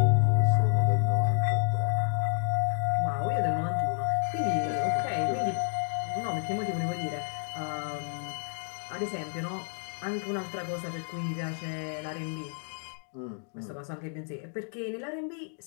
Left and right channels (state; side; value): silent; right; 58 dB below the other